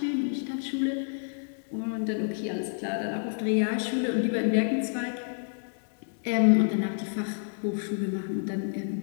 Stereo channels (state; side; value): silent; right; digital silence